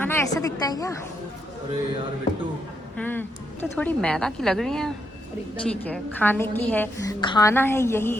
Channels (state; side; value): normal; both; correlation 0.79